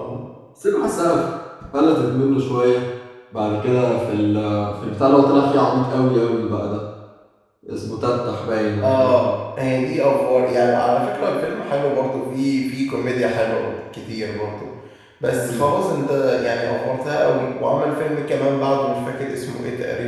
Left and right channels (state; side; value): identical; both; correlation 1.00